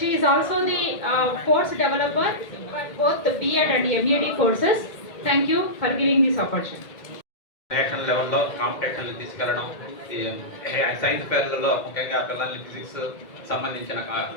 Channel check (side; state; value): right; late; 1.9 ms